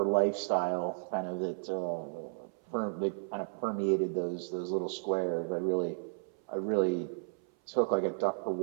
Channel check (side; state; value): left; silent; 56 dB below the other